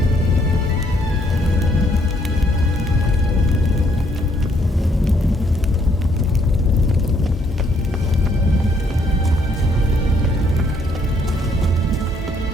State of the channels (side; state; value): both; normal; correlation 0.68